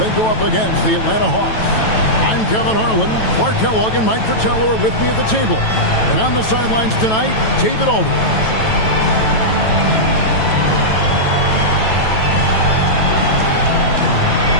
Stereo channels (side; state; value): right; late; 9.1 ms